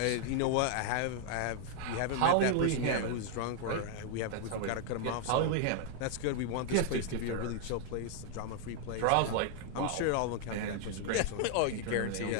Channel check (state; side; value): different; both; correlation 0.00